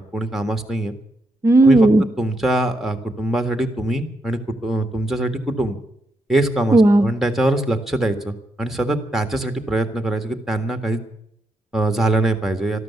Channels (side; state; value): both; normal; correlation 0.81